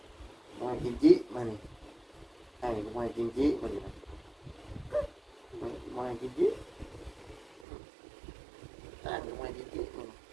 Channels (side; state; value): left; drops out; at 7.7 s